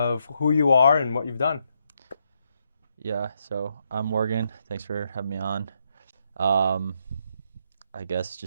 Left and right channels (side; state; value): both; inverted; correlation -0.78